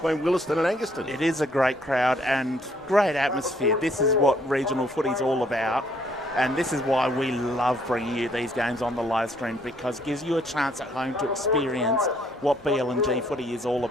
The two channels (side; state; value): both; normal; correlation 0.66